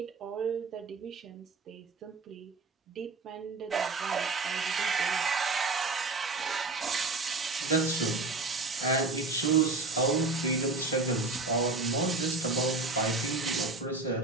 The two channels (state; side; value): quieter; left; 3.5 dB